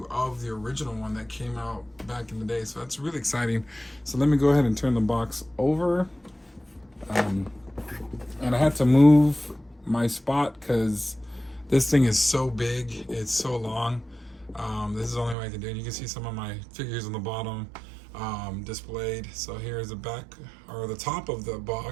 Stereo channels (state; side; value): drops out; left; at 15.4 s